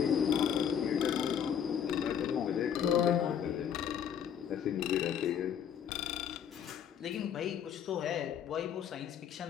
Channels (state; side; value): quieter; right; 8.5 dB